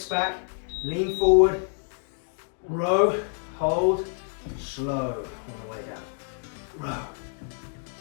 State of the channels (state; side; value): silent; right; 60 dB below the other